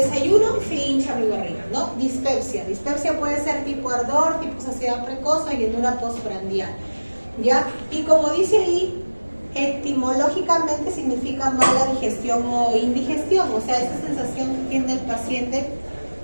y se hincha mi barriga, ¿no? Dispepsia. Dispepsia puede ser tipo ardor, tipo saciedad precoz o llenura postprandial, ¿ya? Y como dice ahí, etimológicamente significa mala digestión o indigestión, o sea, esa sensación que tiene el paciente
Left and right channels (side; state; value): both; inverted; correlation -1.00